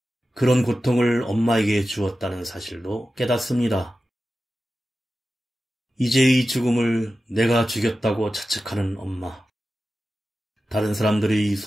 그런 고통을 엄마에게 주었다는 사실도 깨닫습니다. 이제의 죽음을 내가 죽였다고 자책하는 엄마. 다른 사람들의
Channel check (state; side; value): normal; both; correlation 0.93